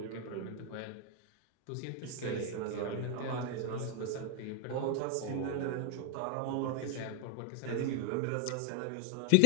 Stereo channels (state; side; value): different; both; correlation 0.00